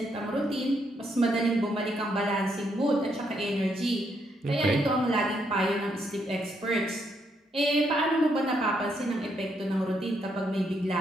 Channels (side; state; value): both; normal; correlation 0.76